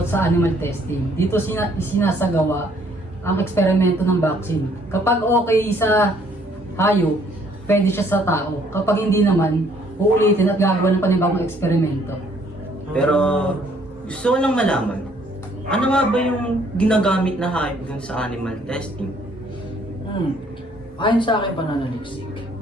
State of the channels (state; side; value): normal; both; correlation 0.63